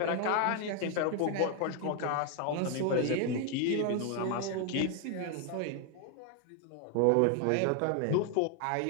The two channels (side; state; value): both; different; correlation 0.01